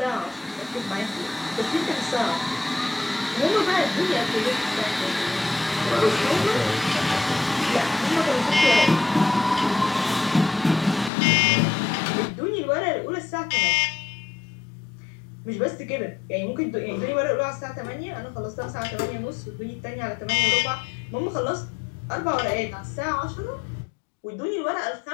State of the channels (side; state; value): right; drops out; at 11.1 s